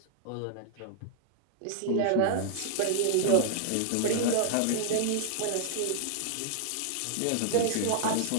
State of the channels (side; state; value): both; different; correlation -0.01